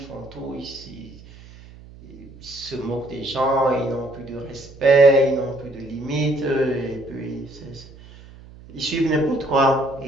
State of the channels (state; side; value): noise; right; hum, 20 dB below the sound